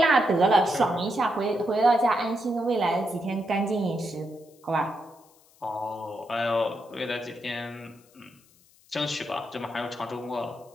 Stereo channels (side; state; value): left; noise; hiss, 29 dB below the sound